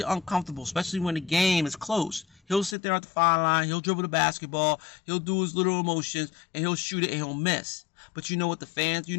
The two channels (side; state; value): right; drops out; at 2.8 s